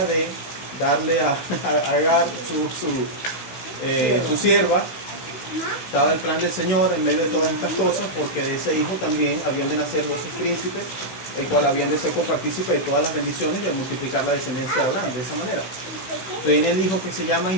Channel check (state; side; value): late; right; 16 ms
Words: de darle a Agar su sierva. Estaba el plan del Señor en medio de todas estas cosas, porque de ese hijo también habían de nacer 12 príncipes, el cual habían de ser copartícipe de todas las bendiciones y de multiplicar la descendencia de Abraham de esa manera. Viene el hijo que se llama